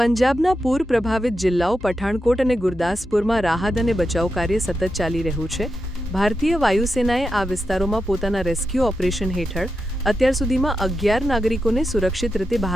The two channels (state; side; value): normal; both; correlation 0.88